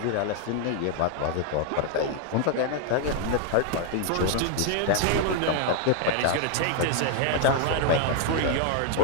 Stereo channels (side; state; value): both; different; correlation 0.00